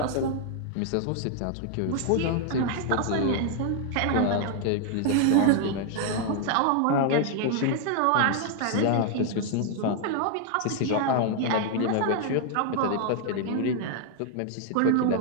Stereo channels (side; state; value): both; different; correlation 0.00